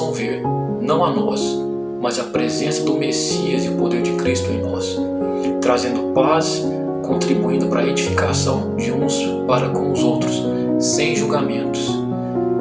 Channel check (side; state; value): both; identical; correlation 1.00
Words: ver, não a nós, mas a presença do Messias e o poder de Cristo em nós, trazendo paz, contribuindo para a edificação de uns para com os outros, sem julgamentos.